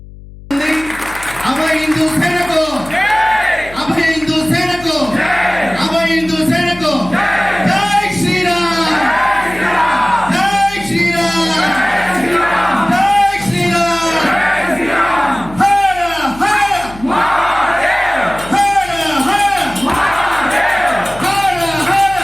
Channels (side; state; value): left; noise; hum, 18 dB below the sound